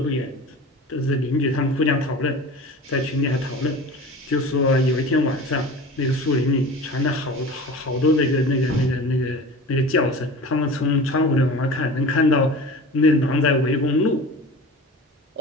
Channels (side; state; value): both; normal; correlation 0.36